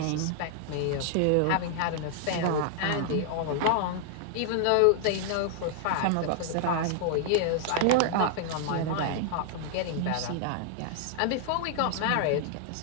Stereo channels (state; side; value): different; both; correlation -0.01